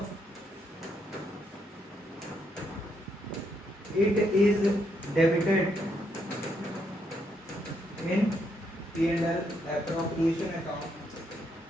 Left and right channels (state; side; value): normal; both; correlation 0.76